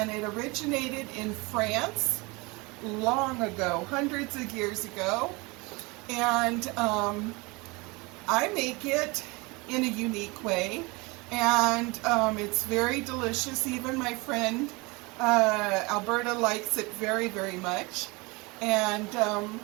it originated in France long ago, hundreds of years ago. And I make it in a unique way. And it's very delicious. Even my friend Alberta likes it very, very much. And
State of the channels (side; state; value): left; quieter; 25.9 dB